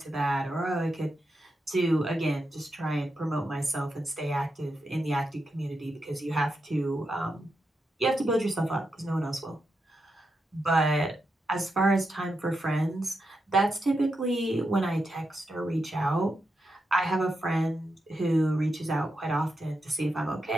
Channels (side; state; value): both; normal; correlation 0.86